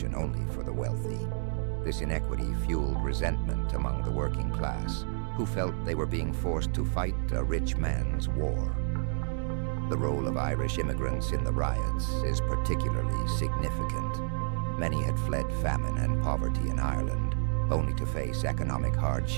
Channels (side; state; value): left; silent; digital silence